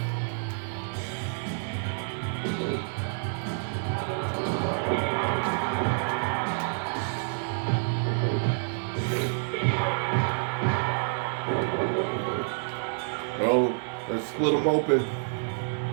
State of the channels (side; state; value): left; silent; digital silence